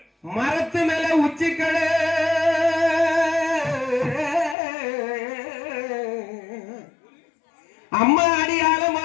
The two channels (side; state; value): right; drops out; at 4.5 s